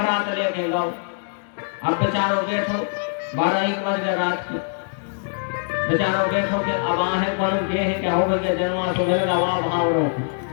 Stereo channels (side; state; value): right; silent; digital silence